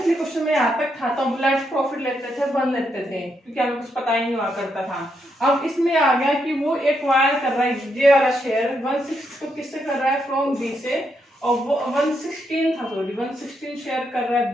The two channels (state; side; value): normal; both; correlation 0.79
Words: क्वेश्चन में यहाँ तक था तो ब्लैक प्रॉफिट लेते थे, 1 लेते थे, क्योंकि हमें कुछ पता ही नहीं हुआ करता था। अब इसमें आ गया कि वो एक्वायर कर रहा है ये वाला शेयर 1/6 को किससे कर रहा है, फ्रॉम बी से, और वो 1/16 था, सॉरी 1/16 शेयर कर रहा है